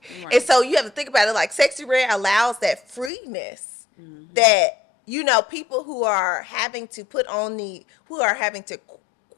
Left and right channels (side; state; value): right; drops out; at 3.1 s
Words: Right. And so you have to think about it like Sexy Red allows that freeness that people who are having to kind